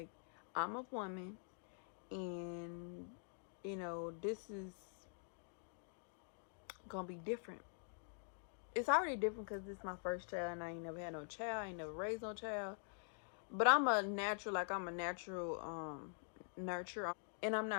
I'm a woman, and you know, this is gonna be different. It's already different because this is my first child, and I ain't never had no child, I ain't never raised no child. But I'm a natural, nurture, and I'm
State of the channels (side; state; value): right; silent; digital silence